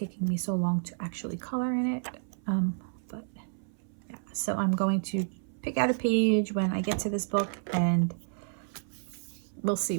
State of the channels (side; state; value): left; silent; 57 dB below the other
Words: me so long to actually color in it, but yeah. So I'm going to pick out a page when I get to this book, and we'll see